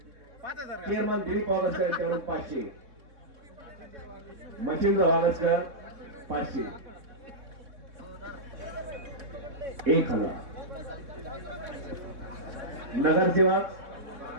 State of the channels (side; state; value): left; late; 3.6 ms